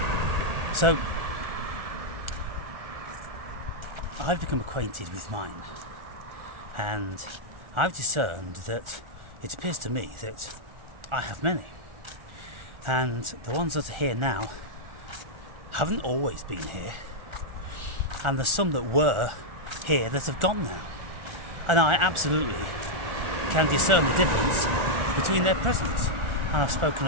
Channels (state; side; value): late; left; 1.4 ms